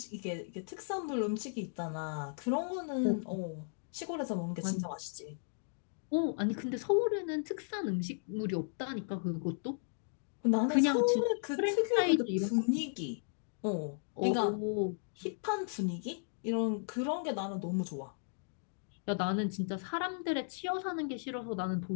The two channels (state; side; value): silent; right; digital silence